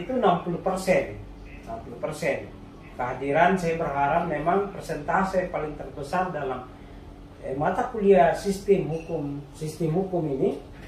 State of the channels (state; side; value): identical; both; correlation 1.00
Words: 60%. Kehadiran saya berharap memang persentase paling terbesar dalam mata kuliah sistem hukum ini